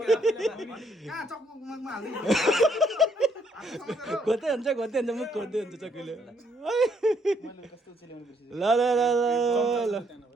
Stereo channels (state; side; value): normal; both; correlation 0.70